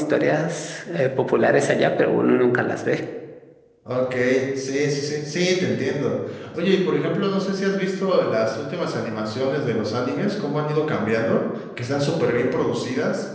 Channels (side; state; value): both; identical; correlation 1.00